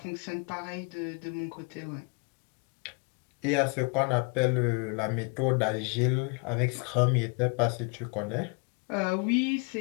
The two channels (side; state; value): right; quieter; 34.6 dB